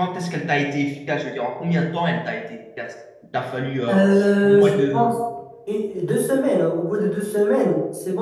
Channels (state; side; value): identical; both; correlation 1.00